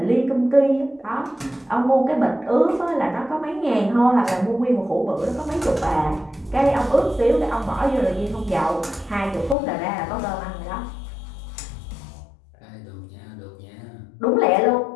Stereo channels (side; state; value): right; drops out; at 9.6 s